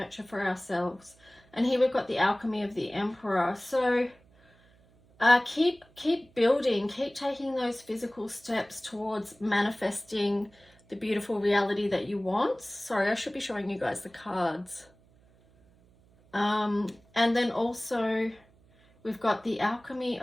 for ourselves? And here we've got the alchemy of the Emperor. So keep building, keep taking those physical steps towards manifesting the beautiful reality that you want. Sorry, I should be showing you guys the cards. And then also we've got the alchemy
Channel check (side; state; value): right; noise; hum, 30 dB below the sound